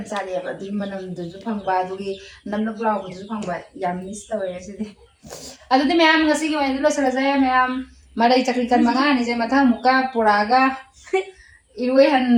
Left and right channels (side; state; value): both; identical; correlation 1.00